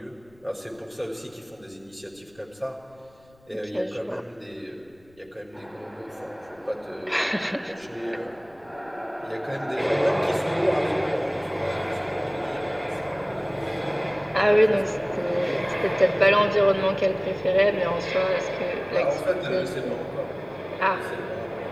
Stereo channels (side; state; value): left; noise; rumble, 30 dB below the sound